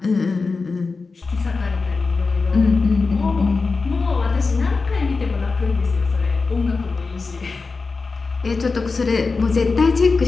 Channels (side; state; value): right; quieter; 4.2 dB